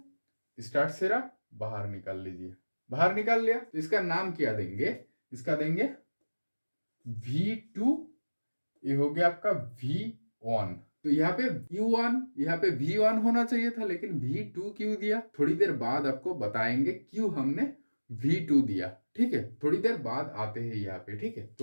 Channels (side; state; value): both; inverted; correlation -1.00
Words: स्टार्ट सिरा बाहर निकाल लीजिए। बाहर निकाल लिया तो इसका नाम क्या देंगे, इसका देंगे V2, ये हो गया आपका V1। तो यहाँ पे U1, यहाँ पे V1 होना चाहिए था, लेकिन V2 क्यों दिया, थोड़ी देर बाद आपको बताएंगे क्यों हमने V2 दिया, ठीक है। थोड़ी देर बाद आते हैं यहाँ पे, ठीक है।